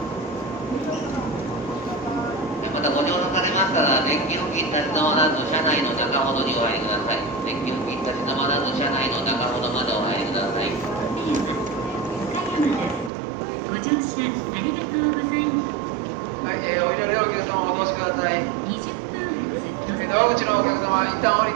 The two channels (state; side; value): drops out; left; at 13.1 s